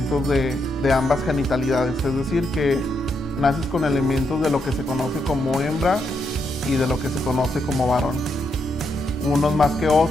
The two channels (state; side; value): normal; both; correlation 0.80